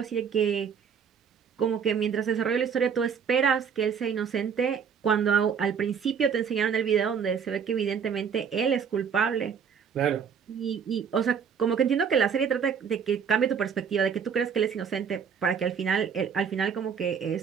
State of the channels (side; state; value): left; quieter; 7.0 dB